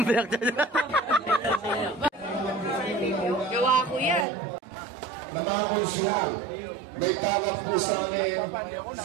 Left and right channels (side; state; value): left; drops out; at 4.2 s